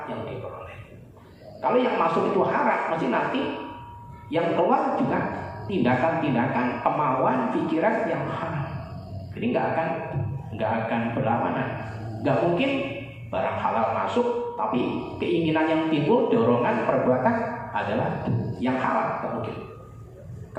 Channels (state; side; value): identical; both; correlation 1.00